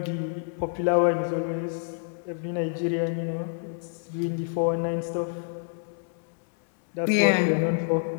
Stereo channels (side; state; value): right; silent; digital silence